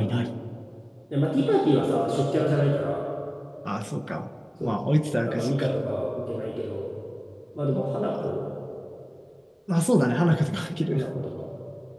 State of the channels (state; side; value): identical; both; correlation 1.00